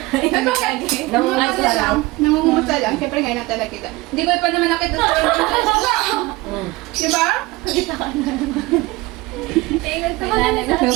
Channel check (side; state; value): left; quieter; 21.3 dB